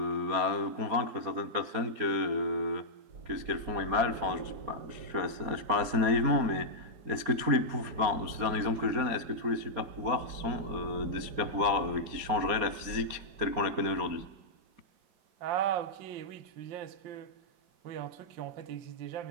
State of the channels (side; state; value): left; late; 4.3 ms